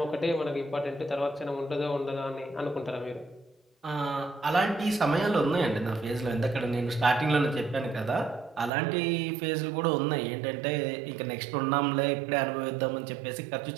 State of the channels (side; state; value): left; drops out; at 8.7 s